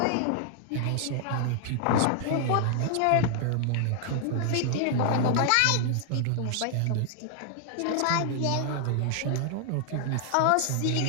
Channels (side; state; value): both; different; correlation 0.00